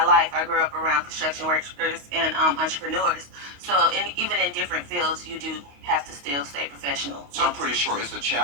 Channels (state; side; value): late; left; 28 ms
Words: life I grew up around construction workers and entrepreneurs. So even in different fields, you do have to still stay professional. So I'm pretty sure it's a